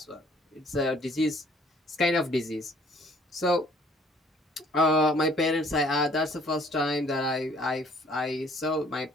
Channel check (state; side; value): normal; both; correlation 0.58